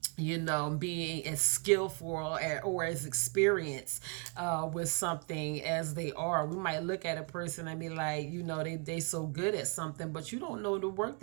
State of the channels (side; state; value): left; quieter; 34.9 dB